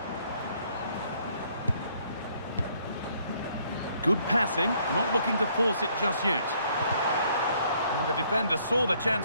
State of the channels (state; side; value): inverted; both; correlation -0.66